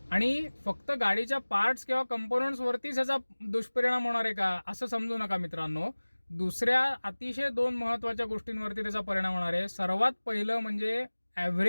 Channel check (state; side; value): inverted; both; correlation -1.00